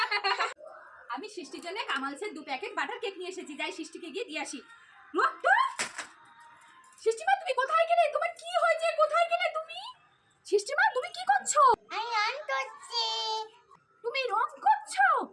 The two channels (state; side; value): identical; both; correlation 1.00